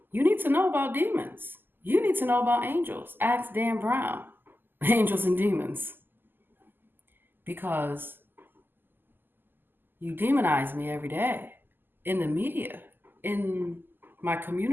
You need to know about demons. You need to know about angels. Ask Dan Brown, angels and demons. Because you demonize me every day in the media, in my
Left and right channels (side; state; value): left; late; 0.093 ms